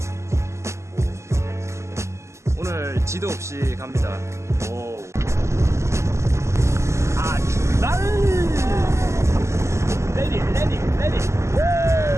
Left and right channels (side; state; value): left; late; 0.13 ms